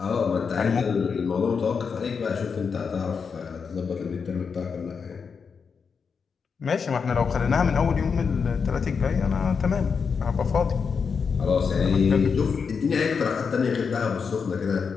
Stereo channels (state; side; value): quieter; right; 5.8 dB